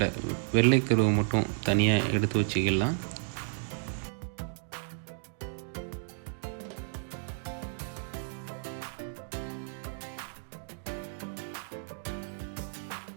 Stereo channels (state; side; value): silent; left; digital silence